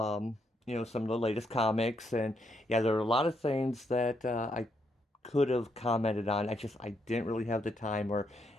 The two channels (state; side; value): normal; both; correlation 0.77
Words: of the latest comics. And yeah, there are a lot of things that I could have commented on. I didn't really have the time or,